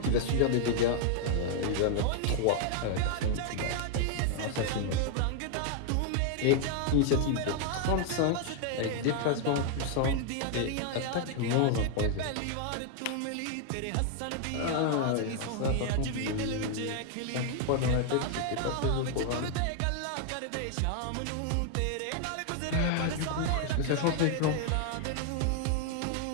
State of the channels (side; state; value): both; different; correlation 0.00